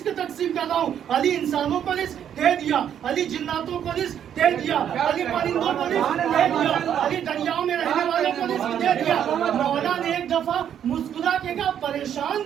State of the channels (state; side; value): quieter; left; 9.4 dB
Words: तकसीम कर रहा हूँ। अली इंसानों को रिस्क दे दिया, अली जिन्नातों को रिस्क दे दिया, अली परिंदों को रिस्क दे दिया, अली दरियाओं में रहने वालों को रिस्क दे दिया। मौला ने एक दफा मुस्कुरा के कहा परेशान